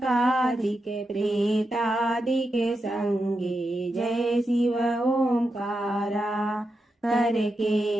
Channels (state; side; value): normal; both; correlation 0.87